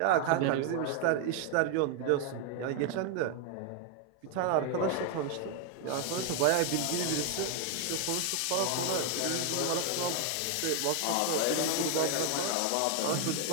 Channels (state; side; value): different; both; correlation 0.01